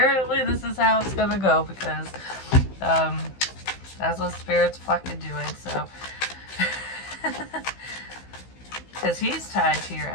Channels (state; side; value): late; right; 15 ms